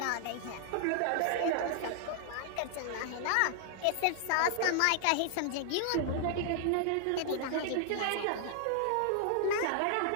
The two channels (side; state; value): both; different; correlation 0.00